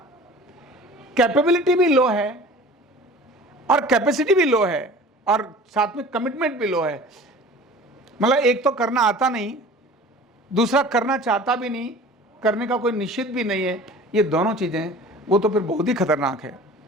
कैपेबिलिटी भी लो है और कैपेसिटी भी लो है और साथ में कमिटमेंट भी लो है। मतलब एक तो करना आता नहीं, दूसरा करना चाहता भी नहीं, करने का कोई निश्चित भी नहीं है। ये दोनों चीजें वो तो फिर बहुत ही खतरनाक है।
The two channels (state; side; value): normal; both; correlation 0.43